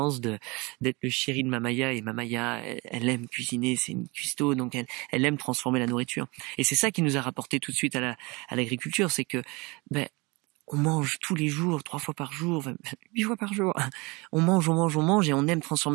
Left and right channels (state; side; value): quieter; left; 26.0 dB